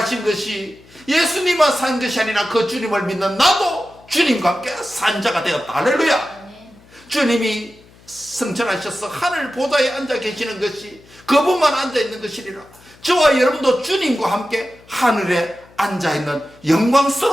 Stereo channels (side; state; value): left; noise; hum, 26 dB below the sound